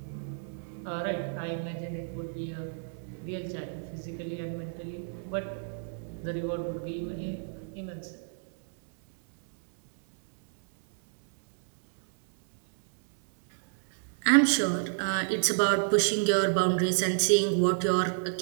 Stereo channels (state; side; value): silent; left; digital silence